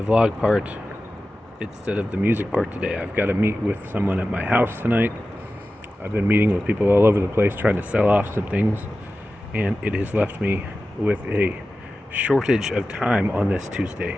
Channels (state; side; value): normal; both; correlation 0.94